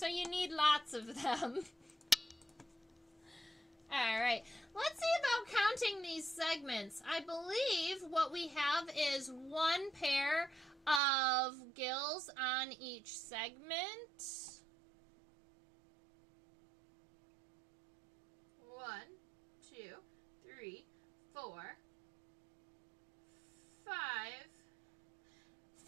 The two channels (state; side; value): drops out; left; at 11.0 s